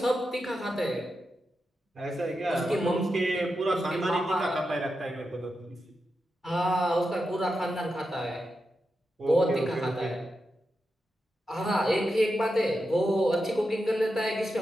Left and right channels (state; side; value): normal; both; correlation 0.88